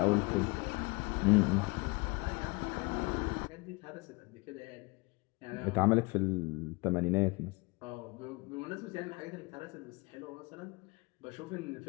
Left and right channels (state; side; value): quieter; right; 26.9 dB